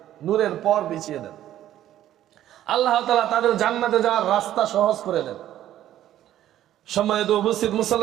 নূরের পর বিছিয়ে দেন। আল্লাহ তাআলা তাদের জান্নাতে যাওয়ার রাস্তা সহজ করে দেন। সম্মানিত উপস্থিত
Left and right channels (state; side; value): quieter; left; 12.4 dB